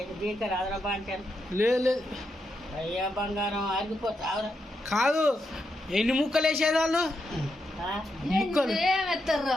బీకరా అదరా బాంచాను. లేదు అయ్యా బంగారం ఆగిపోతావురా. కాదు, ఎన్ని ముక్కలు వేసేది వాళ్ళు?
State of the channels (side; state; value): both; normal; correlation 0.83